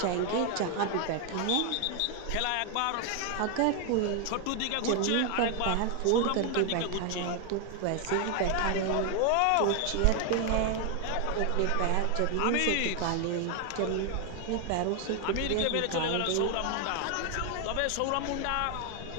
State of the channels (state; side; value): different; both; correlation 0.01